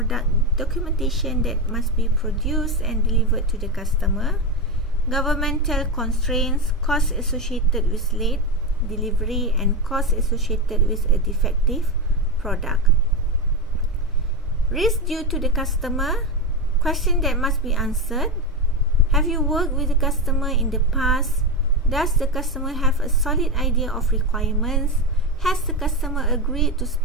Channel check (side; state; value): both; normal; correlation 0.14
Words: documentation that must be produced and delivered to the customer, governmental constraints, costs associated with late delivery, and costs associated with a defective product. Risk due to the customer, question that must be answered. Have you worked with the customer in the past? Does the customer have a solid idea of requirements? Has the customer agreed to